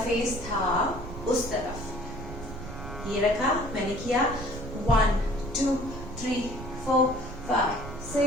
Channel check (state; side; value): noise; right; rumble, 11 dB below the sound